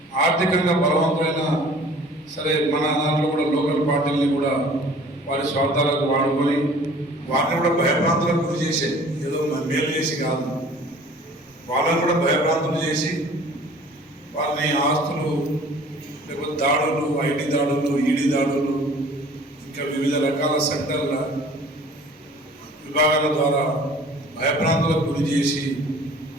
ఆర్థికంగా బలవంతమైన సరే మన దాంట్లో కూడా లోకల్ పార్టీల్ని కూడా వారి స్వార్థాలకు వాడుకొని వారిని కూడా భయభ్రాంతులకు గురి చేసే, ఏదో మేలు చేసి కాదు, వాళ్ళని కూడా భయభ్రాంతులు చేసి వారిని ఆస్తులు లేకపోతే దాడులు, ఐటీ దాడులు, ఈడీ దాడులు, ఇంకా వివిధ రకాల సెంటర్ల విభాగాల ద్వారా భయభ్రాంతులకు గురి చేసి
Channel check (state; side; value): normal; both; correlation 0.49